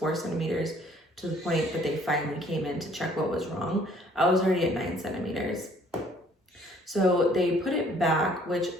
centimeters, to the point that they finally came in to check what was wrong, I was already at 9 centimeters. So they put it back, which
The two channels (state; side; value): normal; both; correlation 0.59